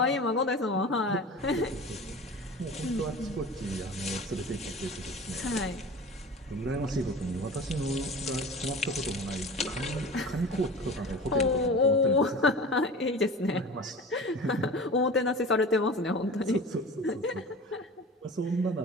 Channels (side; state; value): both; normal; correlation 0.36